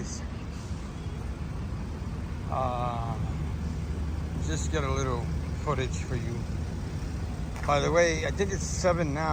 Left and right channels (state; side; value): identical; both; correlation 1.00